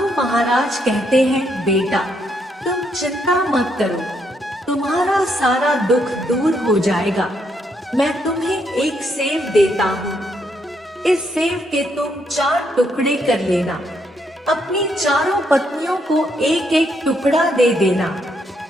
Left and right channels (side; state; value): both; normal; correlation 0.75